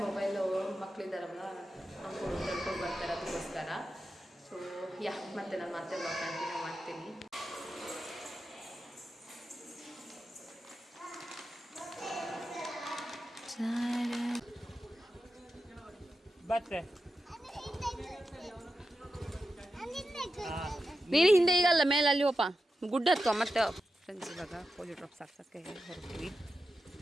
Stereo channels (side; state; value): both; normal; correlation 0.91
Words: ಮೊಬೈಲು ಮಕ್ಕಳಿದ್ದಾರಲ್ಲ ನೋಡ್ಕೊಂಡು ತಿಳ್ಕೊಂಡು ಬರ್ತಾರೆ, ಅದಕ್ಕೋಸ್ಕರ. ಸೊ ಮತ್ತೆ ನಾನು ಮತ್ತೆ ಬ್ಲಾಗ್ ಕಂಟಿನ್ಯೂ ಮಾಡ್ತೀನಿ. ಬತ್ತೆ ನೀನು ಹಿಂದೆ ಈಗಲ್ಲ, ಮೇಲೆ ಅಲ್ಲಿ ಹೋಪ ಗುಡ್ಡ ಹತ್ತುವ ಮತ್ತೆ. ಫ್ರೆಂಡ್ಸ್ ಇವಾಗ ಪೋಲಿಯೋ ಡ್ರಾಪ್ಸ್ ಹಾಕ್ಸೋಕ್ಕೆ ಹೊರಡ್ತೀವಿ,